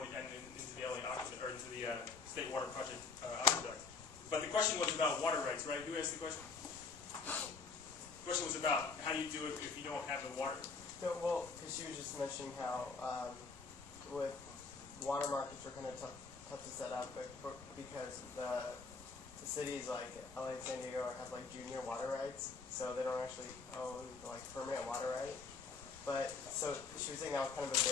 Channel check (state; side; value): quieter; right; 4.6 dB